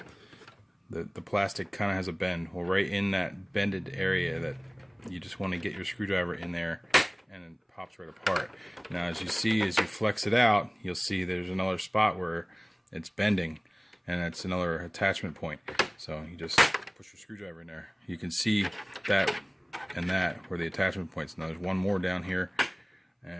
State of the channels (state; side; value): identical; both; correlation 1.00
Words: The plastic kind of has a bend. Well, right in that bended area, that you just want to get your screwdriver in there, and it pops right apart. Now, as you see, as you flex it out, you'll see there's another spot where it's bending, and it's another attachment point. So you just push your screwdriver in there. You can see that and that were the attachment points. Now there's one more down here,